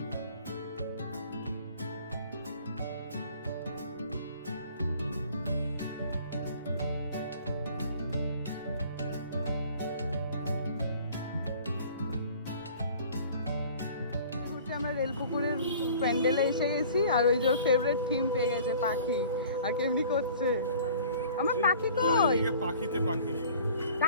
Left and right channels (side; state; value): both; inverted; correlation -0.48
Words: আমরা রেলপুকুরের প্যান্ডেলে এসে গেছি, আর ওই যে ফেভারিট থিম পেয়ে গেছে পাখি। আর কেমনি করছে আমার পাখি, কই পাখিতে পাখি,